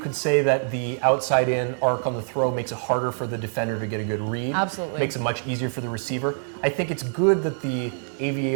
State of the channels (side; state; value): left; silent; 62 dB below the other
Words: say that the outside-in arc on the throw makes it harder for the defender to get a good read. Absolutely. Makes it much easier for the receiver. I think it's good that the